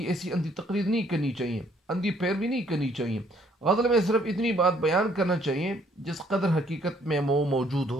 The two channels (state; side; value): normal; both; correlation 0.65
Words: ایسی اندھی تقلید نہیں کرنی چاہیے، اندھی پیروی نہیں کرنی چاہیے۔ غزل میں صرف اتنی بات بیان کرنا چاہیے جس قدر حقیقت میں وہ موجود